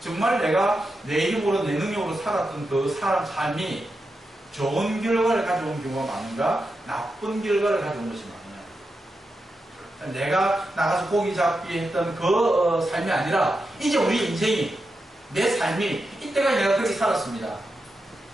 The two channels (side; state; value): both; normal; correlation 0.88